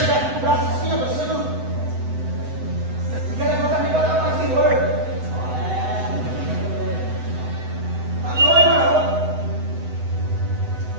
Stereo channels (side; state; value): left; late; 8.0 ms